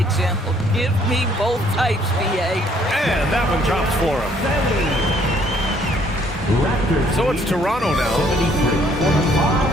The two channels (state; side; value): normal; both; correlation 0.64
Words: Give me both types, BA. And that one drops for him. Raptors. So it's Toronto now.